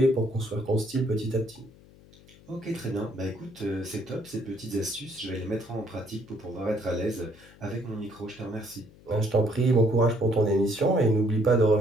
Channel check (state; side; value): noise; left; hum, 24 dB below the sound